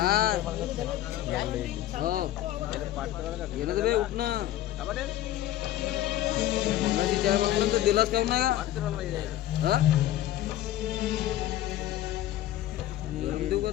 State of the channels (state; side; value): quieter; right; 13.5 dB